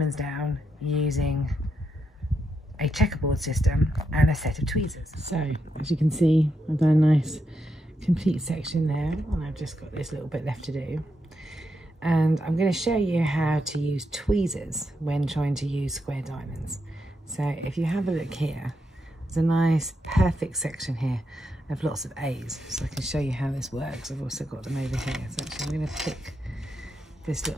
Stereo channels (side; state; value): both; normal; correlation 0.82